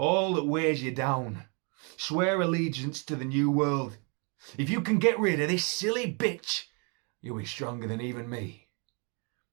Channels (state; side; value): quieter; left; 35.1 dB